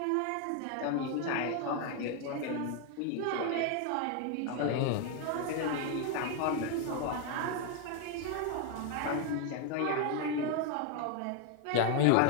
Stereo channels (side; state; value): both; different; correlation 0.01